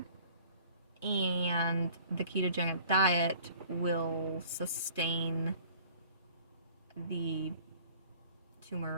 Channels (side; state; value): both; inverted; correlation -0.52